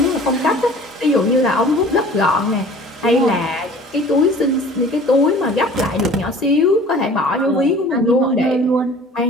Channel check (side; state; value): both; normal; correlation 0.46